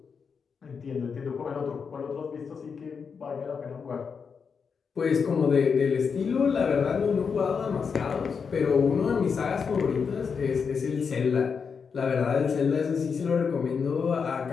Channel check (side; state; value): right; quieter; 5.9 dB